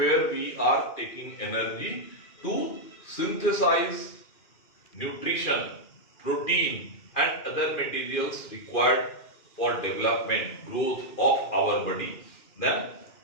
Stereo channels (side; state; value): right; late; 2.4 ms